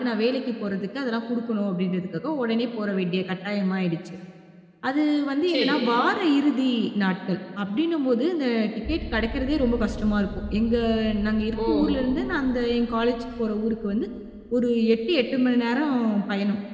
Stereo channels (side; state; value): both; identical; correlation 1.00